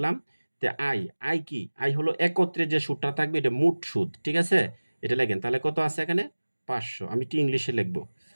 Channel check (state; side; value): inverted; both; correlation -1.00